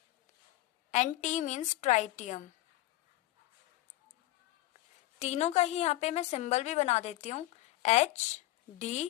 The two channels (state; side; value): quieter; right; 17.1 dB